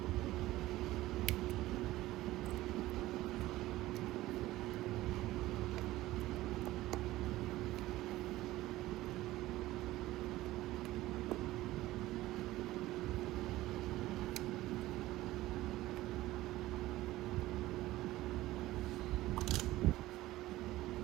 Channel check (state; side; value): quieter; left; 16.8 dB